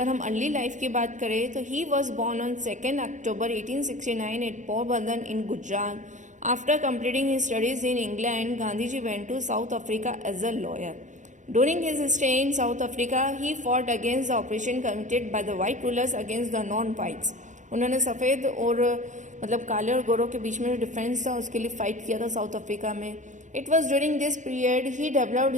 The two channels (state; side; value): late; left; 0.36 ms